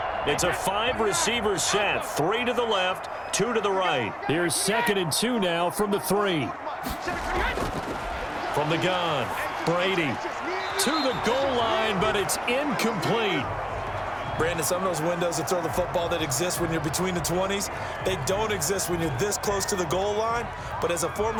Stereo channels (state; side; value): identical; both; correlation 1.00